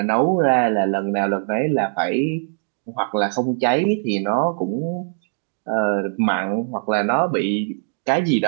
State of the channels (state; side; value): silent; left; digital silence